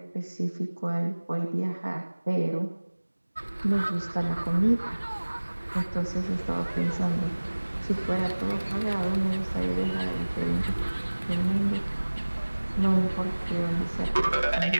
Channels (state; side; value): inverted; both; correlation -1.00